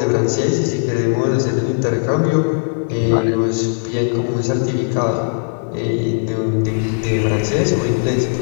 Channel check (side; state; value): right; silent; digital silence